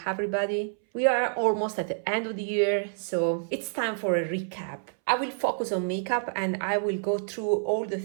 everybody. We are almost at the end of the year, so it's time for a recap. I will focus on makeup and I will go through all the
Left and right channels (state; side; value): silent; left; 59 dB below the other